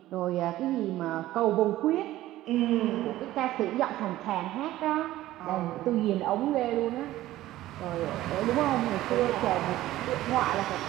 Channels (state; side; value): quieter; left; 15.3 dB